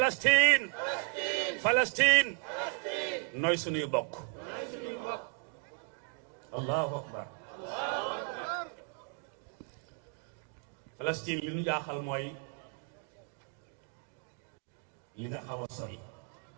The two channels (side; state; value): left; quieter; 38.7 dB